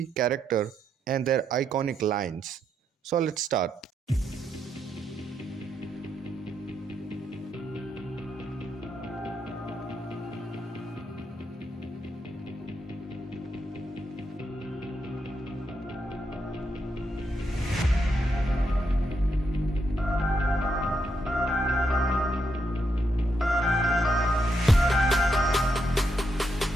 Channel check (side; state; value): both; normal; correlation 0.80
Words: character and their iconic lines. So let's start.